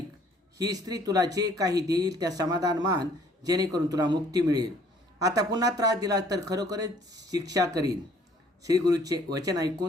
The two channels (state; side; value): normal; both; correlation 0.59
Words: ही स्त्री तुला जे काही देईल त्या समाधान मान, जेणेकरून तुला मुक्ती मिळेल. आता पुन्हा त्रास दिला तर खरोखरच शिक्षा करीन. श्रीगुरूचे वचन